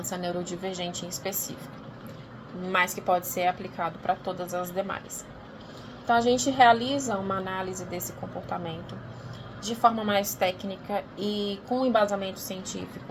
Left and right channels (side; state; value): both; identical; correlation 1.00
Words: neurodivergente em específico, mas que pode ser aplicado para todas as demais. Então, a gente realiza uma análise desse comportamento de forma mais técnica e com embasamento